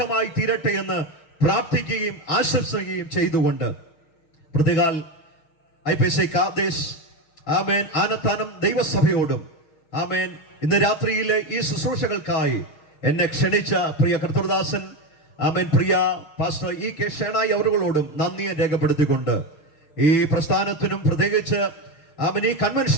തീരട്ടെ എന്ന് പ്രാർത്ഥിക്കുകയും ആശംസിക്കുകയും ചെയ്തുകൊണ്ട് പ്രതികാൽ IPC കാദേശ് ആമേൻ ആനത്താനം ദൈവസഭയോടും ആമേൻ ഇന്ന് രാത്രിയിലെ ഈ ശുശ്രൂഷകൾക്കായി എന്നെ ക്ഷണിച്ച പ്രിയ കർത്തൃദാസൻ ആമേൻ പ്രിയ പാസ്റ്റർ കെ ഷേണായി അവരുകളോടും നന്ദിയെ രേഖപ്പെടുത്തിക്കൊണ്ട് ഈ പ്രസ്ഥാനത്തിനും പ്രത്യേകിച്ച് ആമേൻ ഈ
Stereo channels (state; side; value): late; right; 6.4 ms